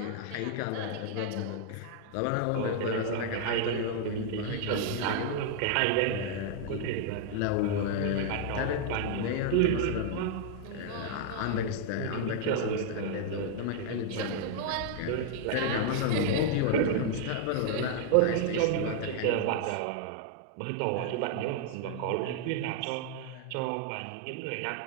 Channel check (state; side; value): different; both; correlation 0.00